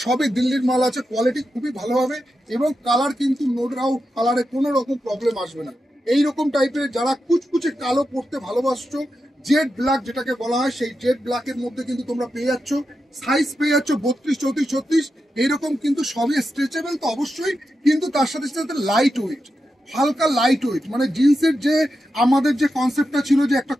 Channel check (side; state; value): both; normal; correlation 0.89